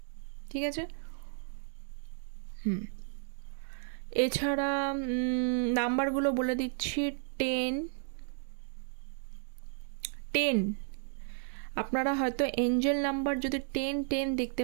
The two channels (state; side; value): silent; left; digital silence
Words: ঠিক আছে। এছাড়া নাম্বারগুলো বলে দিচ্ছি। 10 আপনারা হয়তো এঞ্জেল নাম্বার যদি 10 দেখতে